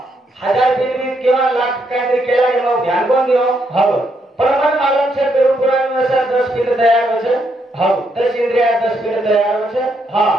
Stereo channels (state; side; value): normal; both; correlation 0.77